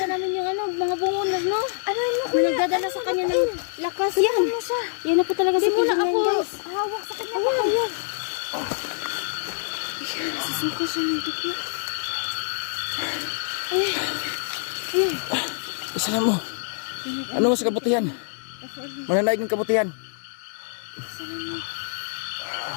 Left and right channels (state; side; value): silent; right; digital silence